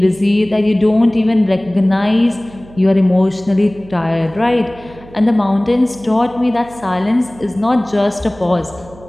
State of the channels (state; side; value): noise; right; hum, 21 dB below the sound